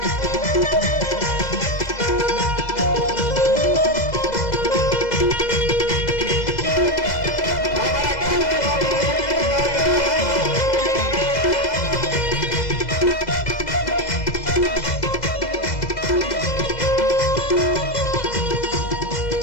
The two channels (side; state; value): right; late; 2.0 ms